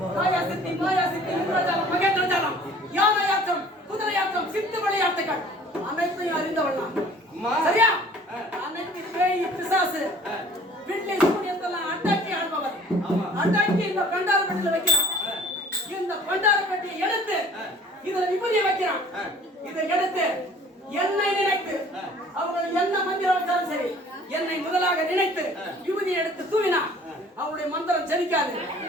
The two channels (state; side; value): normal; both; correlation 0.51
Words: மாயாசக்தி, இந்திரஜாலம், மகேந்திரஜாலம், யானையாட்டம், குதிரையாட்டம், சித்து விளையாட்டுகள் அனைத்தையும் அறிந்தவள் நான். சரியா? அனைத்து பேய் பிசாசு வீட்டில் சூரியத்தெல்லாம் அட்டாக்கி ஆடுபவர். அட்டாக்கி இந்த பண்டார பெட்டியில வைக்கிறான். இந்த பண்டார பெட்டியை எடுத்து இதுல விபூதியை வைக்கிறான். இதை எடுத்து என்னை நினைத்து அவர்கள் என்ன மந்திரம் வச்சாலும் சரி, என்னை முதலாக நினைத்து விபூதியை எடுத்து தூவினான். அவருடைய மந்திரம் ஜெயிக்காது.